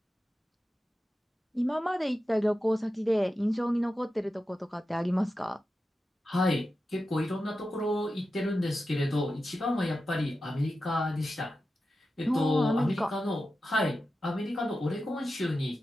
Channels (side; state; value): both; normal; correlation 0.91